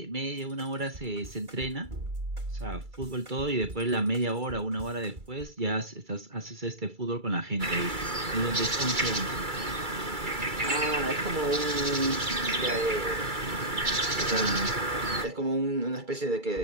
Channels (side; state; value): left; late; 2.3 ms